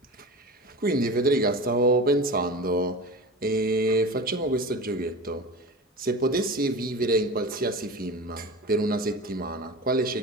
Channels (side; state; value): both; normal; correlation 0.31